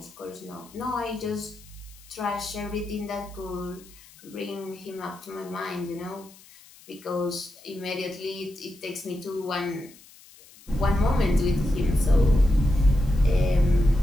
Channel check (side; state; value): left; noise; hiss, 23 dB below the sound